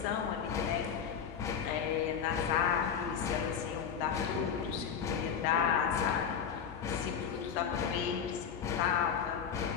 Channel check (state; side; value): quieter; right; 7.5 dB